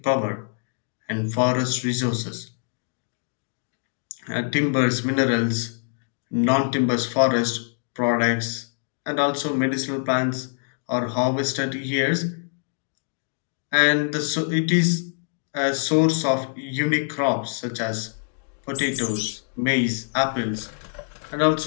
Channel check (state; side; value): silent; right; digital silence